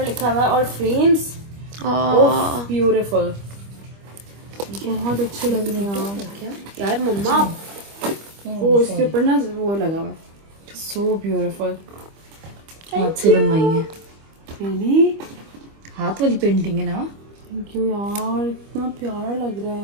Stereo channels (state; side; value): late; left; 25 ms